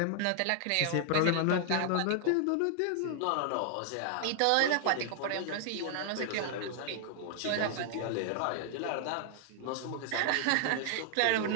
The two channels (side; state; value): both; different; correlation 0.00